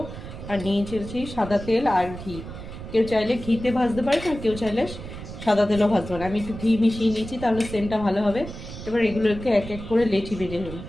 আর নিয়েছি সাদা তেল আর ঘি। কেউ চাইলে ঘিতে ভাজতে পারে, আর কেউ চাইলে সাদা তেলও ভাজতে পারে। আমি একটু ঘি মিশিয়ে নিয়েছি, তাহলে সেন্টটা ভালো হবে। এবার এগুলোকে এক এক করে লেচি বেজে নেব।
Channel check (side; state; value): right; noise; rumble, 11 dB below the sound